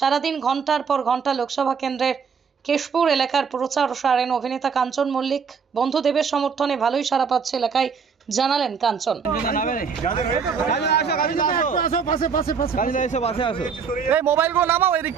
ঘন্টার পর ঘন্টা লোকসভা কেন্দ্রের কেশপুর এলাকার প্রচার সারেন অভিনেতা কাঞ্চন মল্লিক। বন্ধু দেবের সমর্থনে ভালোই সাড়া পাচ্ছে এলাকায়, জানালেন কাঞ্চন। মোবাইলগুলো নামাও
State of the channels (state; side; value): quieter; left; 6.1 dB